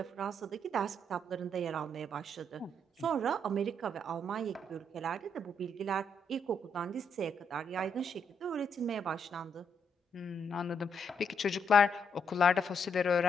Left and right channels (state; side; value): normal; both; correlation 0.75